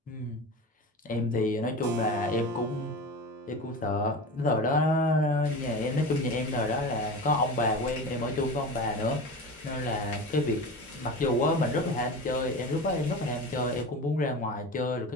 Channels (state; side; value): normal; both; correlation 0.30